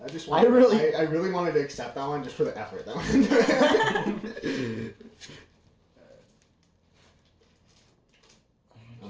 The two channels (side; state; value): both; identical; correlation 1.00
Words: I just I really- I really wanted to accept that one just for the effort. That one.